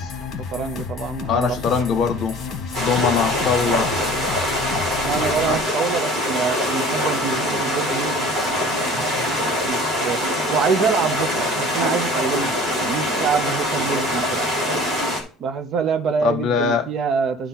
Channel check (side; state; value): both; normal; correlation 0.45